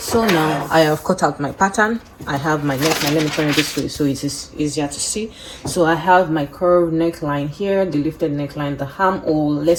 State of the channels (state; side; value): identical; both; correlation 1.00